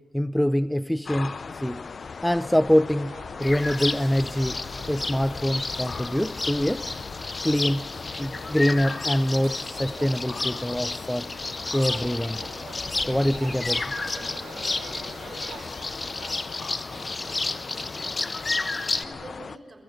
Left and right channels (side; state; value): both; normal; correlation 0.98